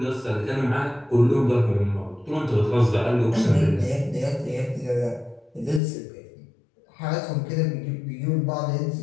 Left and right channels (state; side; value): drops out; right; at 5.8 s